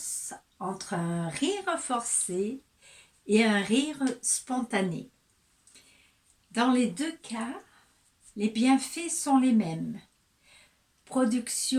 entre un rire forcé et un rire spontané. Dans les deux cas, les bienfaits sont les mêmes.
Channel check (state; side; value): identical; both; correlation 1.00